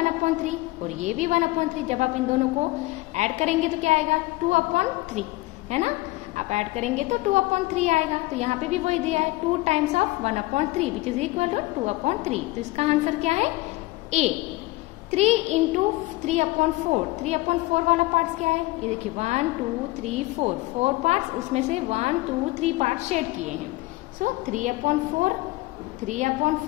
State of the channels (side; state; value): right; quieter; 20.3 dB